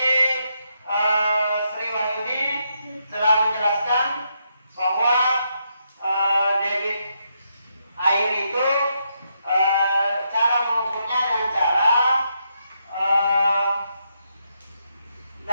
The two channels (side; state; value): both; inverted; correlation -0.80